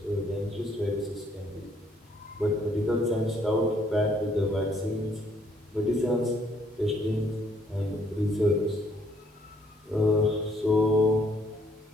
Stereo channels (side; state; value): both; normal; correlation 0.66